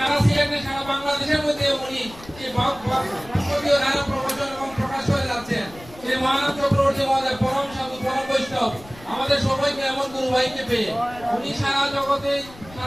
সিলেটে, সারা বাংলাদেশের মধ্যে উনি যে ভাগবতীয় ধারা প্রবচন এবং প্রকাশ করে যাচ্ছেন, সেই মহানাথ চক্রবর্তী মহোদয় পরম সাধু, পরম বৈষ্ণব, আমাদের সবাইকে এমন গুরু ভাইকে পেয়ে উনি সারা জগতে,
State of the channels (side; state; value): left; noise; rumble, 20 dB below the sound